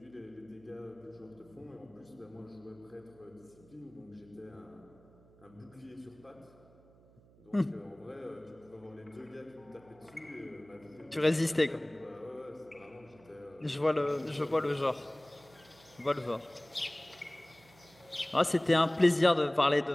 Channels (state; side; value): noise; right; hum, 26 dB below the sound